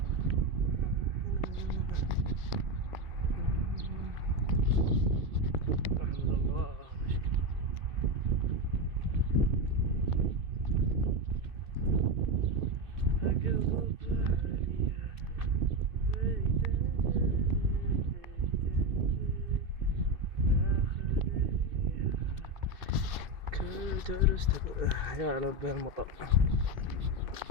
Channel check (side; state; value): left; late; 2.6 ms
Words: أحمد الله درست يا لبي المطر.